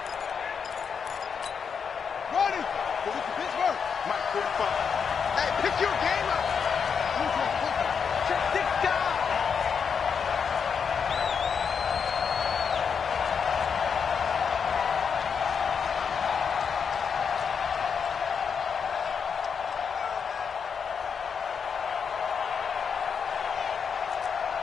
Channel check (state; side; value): quieter; right; 6.5 dB